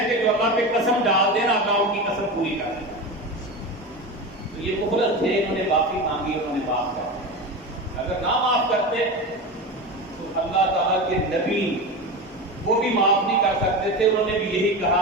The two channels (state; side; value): normal; both; correlation 0.24